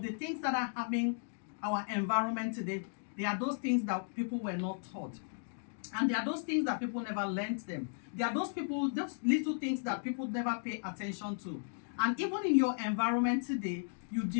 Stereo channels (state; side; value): silent; right; digital silence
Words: the things that are happening our environment today, they are those things that people were not taught. And there are those things that people never learned them. There are those little things that people never pay attention to. And even in your environment today,